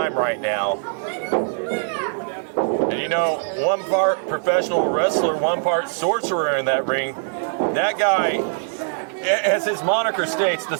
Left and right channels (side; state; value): left; silent; 64 dB below the other